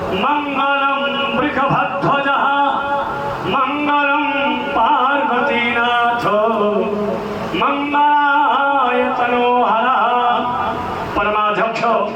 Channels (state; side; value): identical; both; correlation 1.00